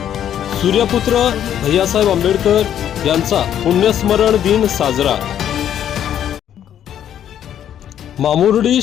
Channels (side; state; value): right; quieter; 10.2 dB